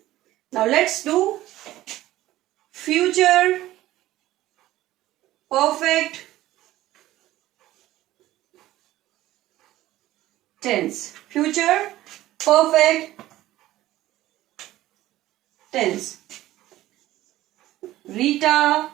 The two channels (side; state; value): left; quieter; 15.4 dB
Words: Now let's do future perfect tense. Future perfect tense. Rita